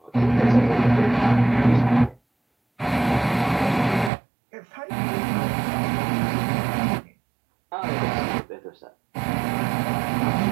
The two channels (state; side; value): drops out; left; at 4.1 s